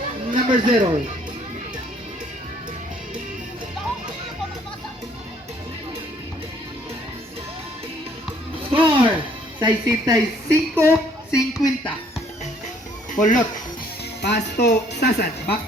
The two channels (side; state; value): both; normal; correlation 0.62